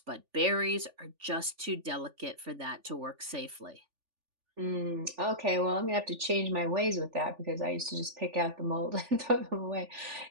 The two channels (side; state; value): left; late; 3.4 ms